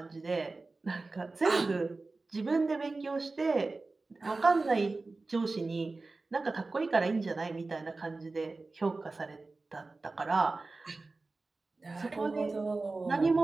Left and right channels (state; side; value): quieter; left; 3.5 dB